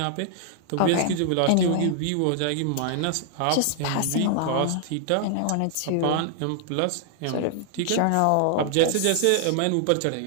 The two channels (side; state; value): both; different; correlation 0.00